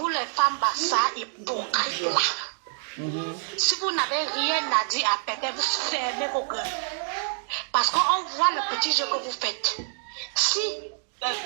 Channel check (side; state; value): left; silent; 60 dB below the other